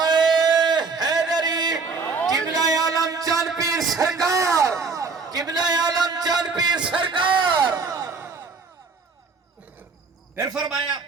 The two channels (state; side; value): quieter; left; 4.5 dB